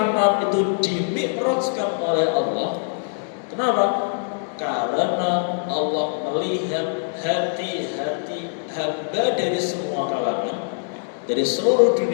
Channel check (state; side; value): silent; right; digital silence